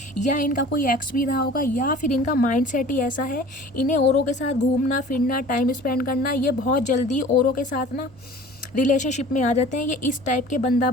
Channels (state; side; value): noise; right; rumble, 29 dB below the sound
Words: या इनका कोई एक्स भी रहा होगा, या फिर इनका माइंडसेट ही ऐसा है, इन्हें औरों के साथ घूमना फिरना, टाइम स्पेंड करना, ये बहुत जल्दी औरों के साथ ना रिलेशनशिप में आ जाते हैं। ये इस टाइप के बंदा